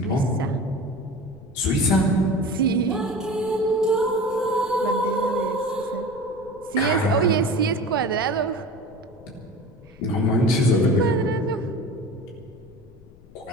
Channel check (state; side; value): noise; left; rumble, 23 dB below the sound